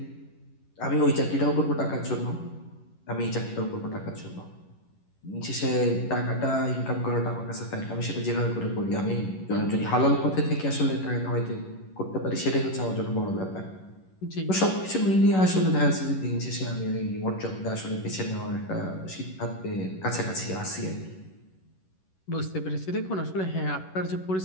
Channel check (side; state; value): right; late; 11 ms